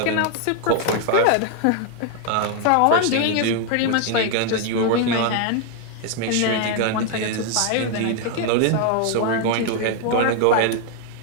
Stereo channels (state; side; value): different; both; correlation 0.00